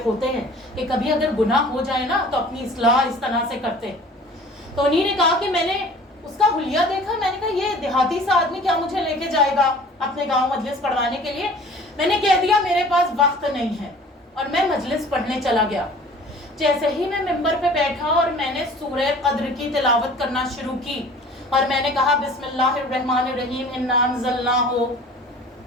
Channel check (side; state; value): both; normal; correlation 0.47